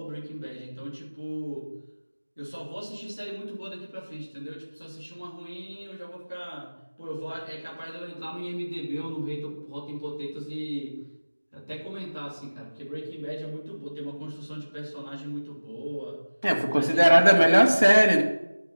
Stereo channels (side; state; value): both; inverted; correlation -1.00